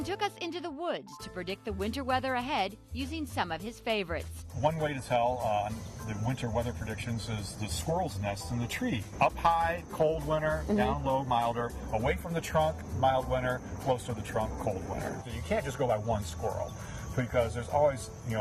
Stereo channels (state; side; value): identical; both; correlation 1.00